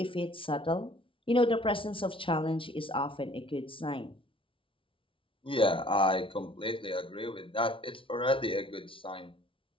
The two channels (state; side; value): late; right; 0.25 ms